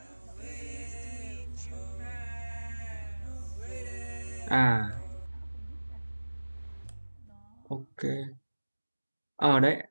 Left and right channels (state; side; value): inverted; both; correlation -1.00